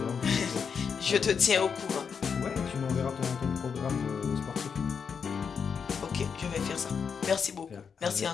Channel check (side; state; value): right; quieter; 6.4 dB